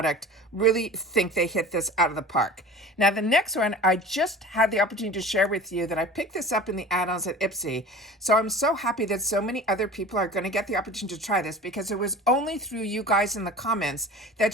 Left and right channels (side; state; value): both; normal; correlation 0.38